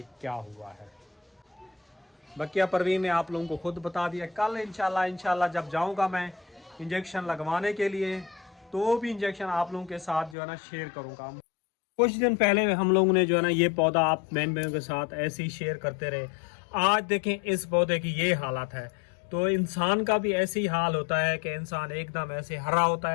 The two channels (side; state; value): right; drops out; at 10.4 s